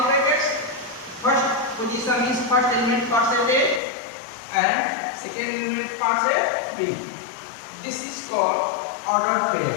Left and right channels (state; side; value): drops out; right; at 3.8 s